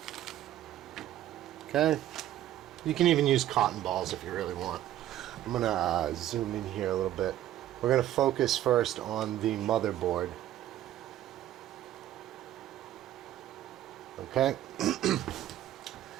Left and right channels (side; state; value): left; quieter; 12.9 dB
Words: Okay. You can even use cotton balls if you really want. I'm gonna zoom in here a little bit. We're gonna focus first on the motherboard. Okay.